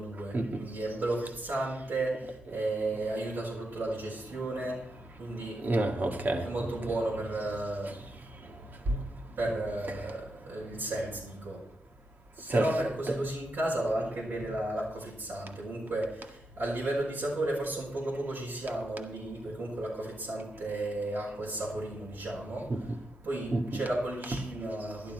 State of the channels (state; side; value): normal; both; correlation 0.85